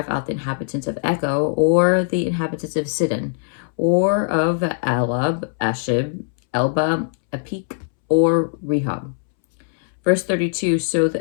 out the inhabitants of Echo or the inhabitants of Sidon, or of Alab, Ashib, Elba, Apik, or Rehob. Verse 32, so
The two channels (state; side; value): silent; right; 65 dB below the other